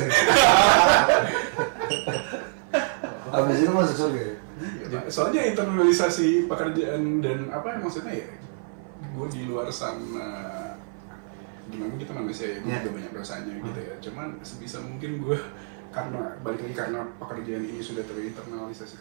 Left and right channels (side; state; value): left; silent; 56 dB below the other